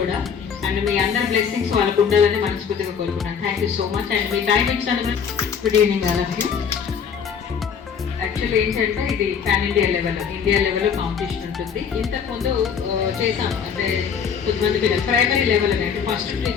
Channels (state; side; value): quieter; right; 7.0 dB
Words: కూడా. అండ్ మీ అందరి బ్లెస్సింగ్స్ వాళ్ళకు ఉండాలని మనస్ఫూర్తిగా కోరుకున్నాను. Thank you so much. And మీ టైం ఇచ్చాను. Good evening all of you. Actually ఏంటంటే ఇది పాన్ ఇండియా లెవెల్లో కాంపిటీషన్ ఉంటుంది. ఇంతకుముందు చేసాం, అంటే కొంతమంది పిల్లలు ప్రైమరీ లెవెల్ అనేది ఫస్ట్